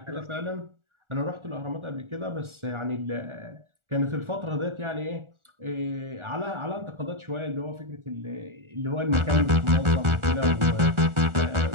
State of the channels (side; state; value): left; late; 1.4 ms